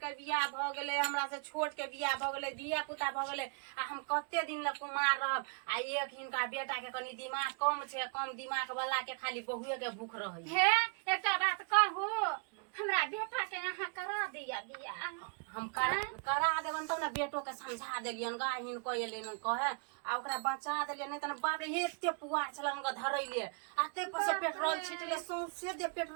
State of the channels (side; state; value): left; quieter; 39.5 dB